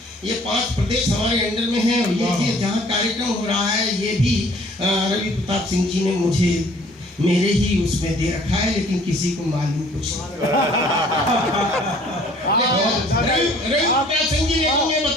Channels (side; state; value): both; normal; correlation 0.55